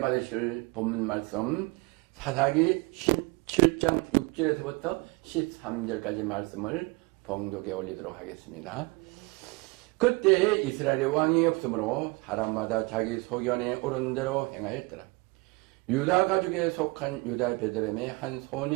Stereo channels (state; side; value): quieter; left; 26.6 dB